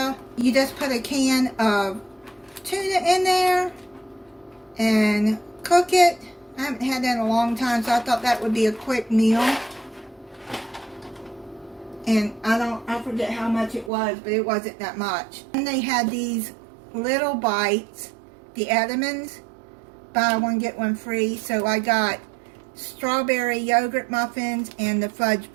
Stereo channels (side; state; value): left; drops out; at 13.9 s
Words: You just put a can of tuna in there and cook it. I haven't had that in a long time, so I thought that would be a quick meal. And I forget how much it was, but it wasn't that much. And they had these little bites, the Edmonds, buy one get one free. So I got strawberry yogurt muffins and the fudge